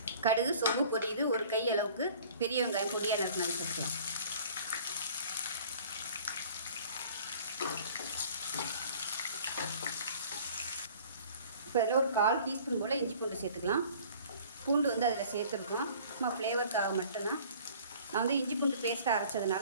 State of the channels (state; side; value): inverted; both; correlation -0.50